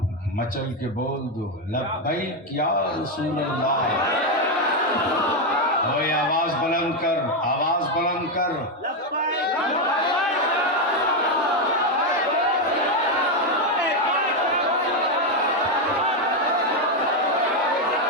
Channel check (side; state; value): both; normal; correlation 0.05